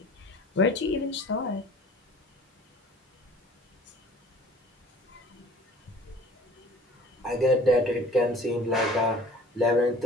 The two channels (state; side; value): normal; both; correlation 0.48